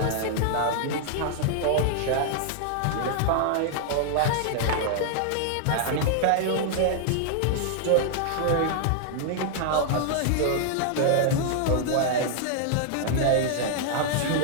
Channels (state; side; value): different; both; correlation -0.01